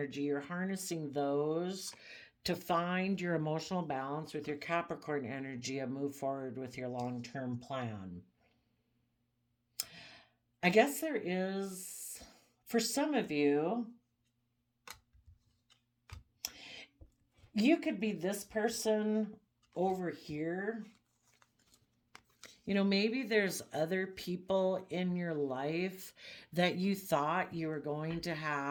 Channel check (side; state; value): both; identical; correlation 1.00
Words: you're harnessing those to find your emotional balance with your Capricorn energy and move forward with your long term plan. I guess there is, for some of you, you could be this person over here. You know, maybe there's other people in your life that you thought you were going to